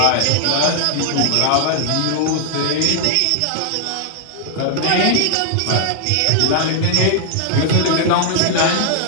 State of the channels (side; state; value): both; different; correlation 0.00